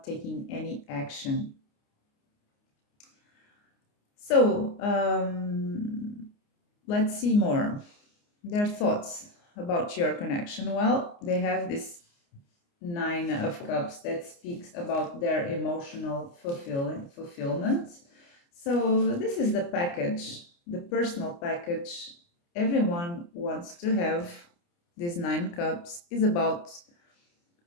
taking any action. So let's see more. Their thoughts about your connection. Well, they have this Nine of Cups that speaks about their emotional fulfillment. So this is the package, the personal package everyone wants to have. This Nine Cups is about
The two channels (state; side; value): late; right; 29 ms